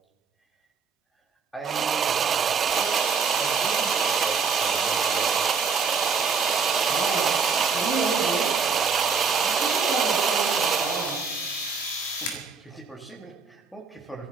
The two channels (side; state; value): left; quieter; 5.6 dB